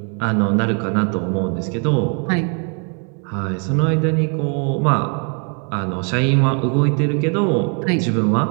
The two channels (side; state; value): left; quieter; 39.1 dB